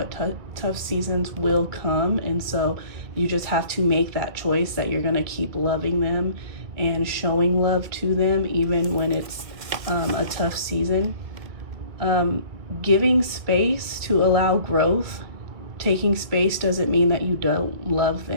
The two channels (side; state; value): left; late; 2.0 ms